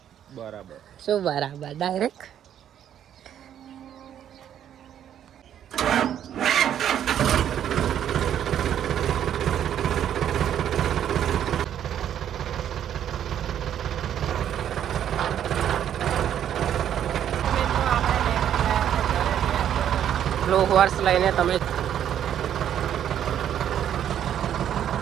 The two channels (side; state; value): left; quieter; 10.1 dB